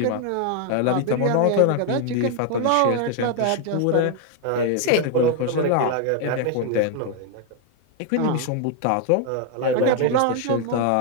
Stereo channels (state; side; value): different; both; correlation 0.01